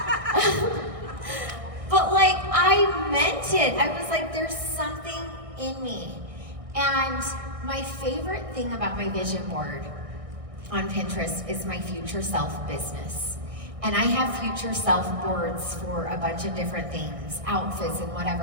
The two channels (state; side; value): late; left; 1.6 ms